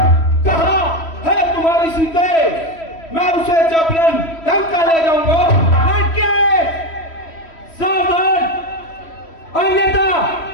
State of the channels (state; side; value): late; right; 3.1 ms